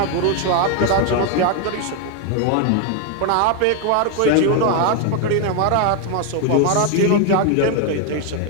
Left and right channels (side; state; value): both; different; correlation 0.01